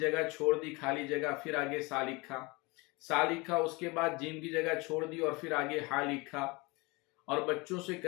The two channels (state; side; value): quieter; right; 25.8 dB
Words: छोड़ दी खाली जगह, फिर आगे सा लिखा, उसके बाद जीम की जगह छोड़ दी और फिर आगे हा लिखा। और बच्चों से